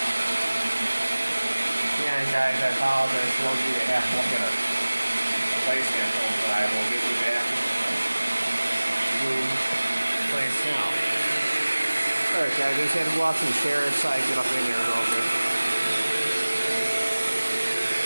Yeah, guys, I apologize for those of you that have to look at a placement film, but I will give you back the place now. Alright guys, I just had to walk some chairs so I can get up in there a little bit.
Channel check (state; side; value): inverted; both; correlation -1.00